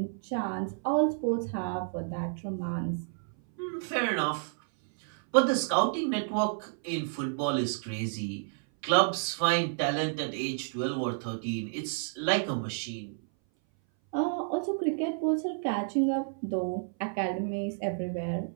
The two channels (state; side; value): silent; left; 57 dB below the other